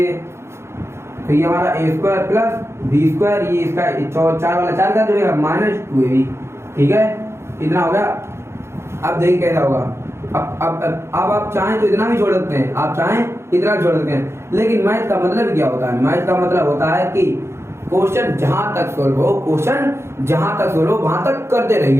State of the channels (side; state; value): left; late; 0.13 ms